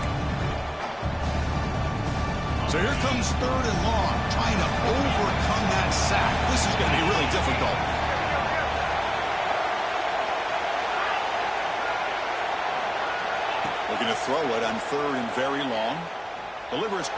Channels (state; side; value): identical; both; correlation 1.00